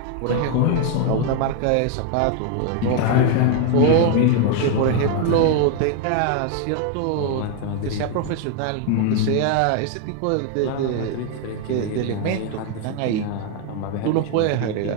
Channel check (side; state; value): both; different; correlation 0.01